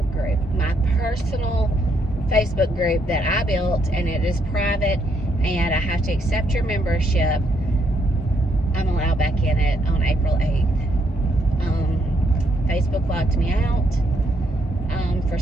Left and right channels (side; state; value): both; normal; correlation 0.74